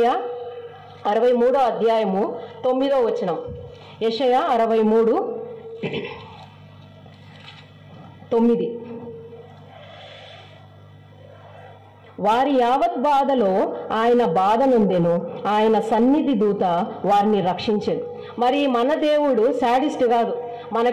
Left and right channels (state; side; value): identical; both; correlation 1.00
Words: 63వ అధ్యాయము 9వ వచనం. యెషయా 63:9. వారి యావత్ బాధలో ఆయన బాధ నొందెను, ఆయన సన్నిధి దూత వారిని రక్షించెను. మరి మన దేవుడు శాడిస్ట్ కాదు.